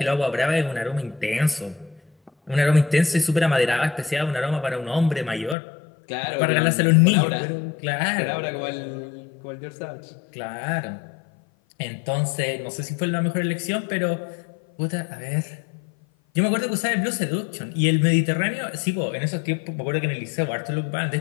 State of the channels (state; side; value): drops out; right; at 5.6 s